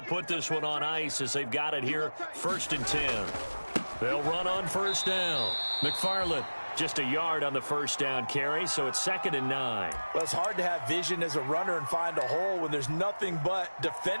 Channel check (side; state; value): both; inverted; correlation -1.00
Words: put this one on ice as they've got it here, 1st and 10. They'll run on first down. McFarland just a yard on the first down carry, so it's 2nd and 9. Well, it's hard to have vision as a runner and find a hole when there's nothing but